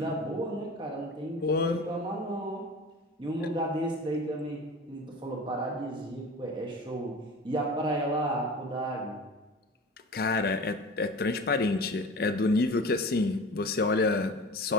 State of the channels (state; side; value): normal; both; correlation 0.36